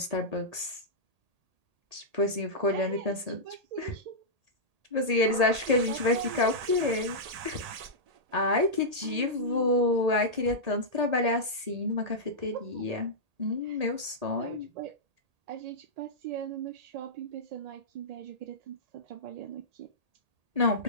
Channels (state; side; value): late; left; 1.8 ms